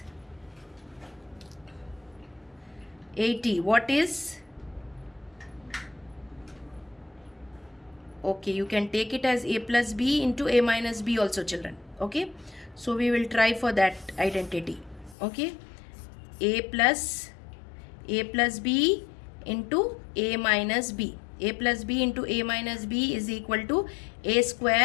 80? What is? Okay, you can take it as a plus b into a minus b also, children. Okay, so we will try for that identity. Okay, a plus b into a minus b. A plus b into a minus b is equal to a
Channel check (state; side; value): drops out; right; at 15.2 s